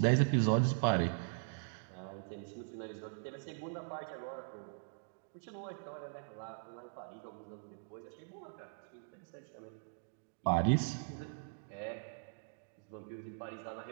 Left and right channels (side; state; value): left; silent; digital silence